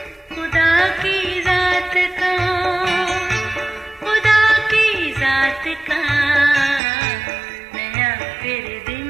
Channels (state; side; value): drops out; left; at 6.8 s